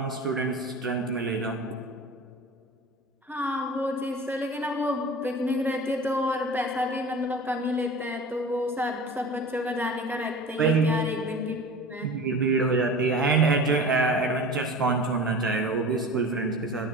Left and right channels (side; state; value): both; normal; correlation 0.37